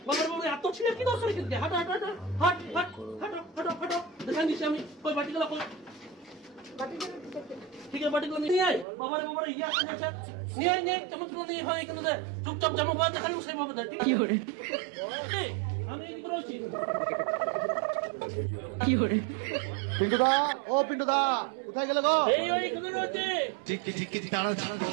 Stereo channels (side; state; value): left; drops out; at 8.8 s